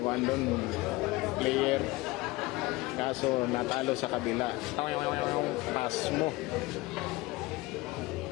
player. Kaso natalo sa kabila. Pass mo.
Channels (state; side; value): quieter; right; 20.6 dB